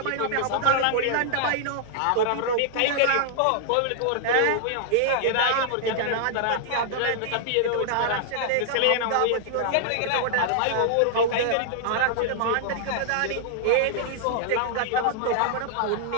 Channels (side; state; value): both; different; correlation -0.01